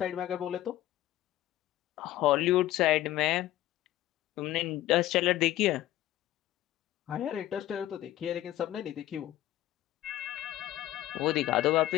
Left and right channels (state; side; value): quieter; right; 14.4 dB